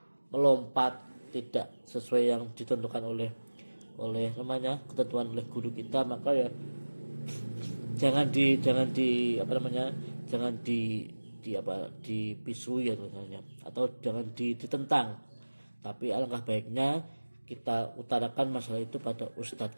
melompat tidak sesuai yang ditentukan oleh namanya ketentuan oleh guru kita maka ya jangan dipisui ya misalnya atau jangan ditentang, tapi alangkah baiknya kita utarakan masalah itu pada ustadz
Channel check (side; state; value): both; inverted; correlation -1.00